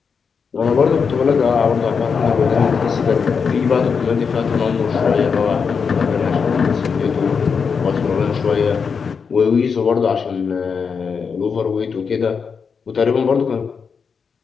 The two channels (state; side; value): quieter; right; 5.9 dB